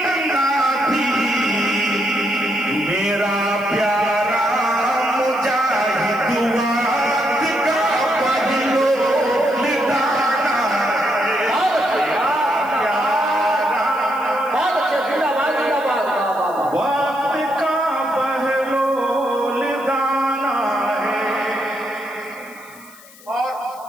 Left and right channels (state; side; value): noise; left; hiss, 23 dB below the sound